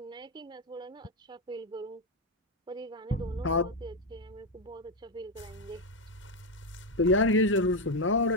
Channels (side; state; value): both; normal; correlation 0.07